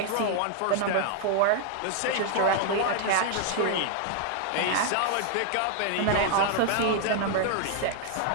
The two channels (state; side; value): different; both; correlation 0.00